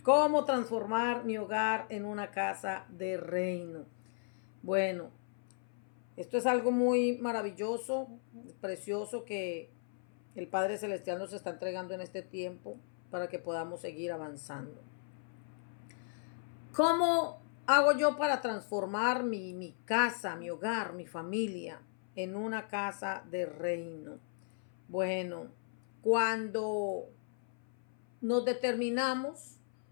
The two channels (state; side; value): silent; right; 54 dB below the other